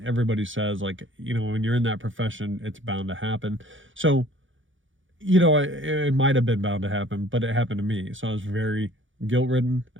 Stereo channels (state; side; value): late; left; 0.56 ms